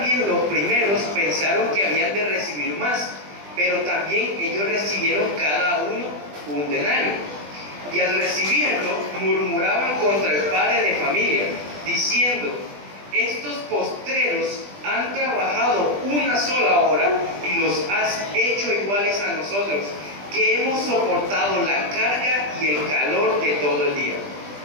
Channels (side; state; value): left; late; 20 ms